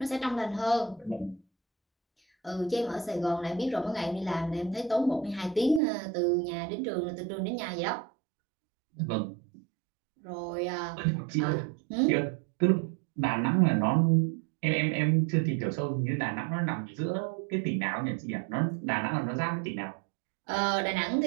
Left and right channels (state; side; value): drops out; left; at 5.8 s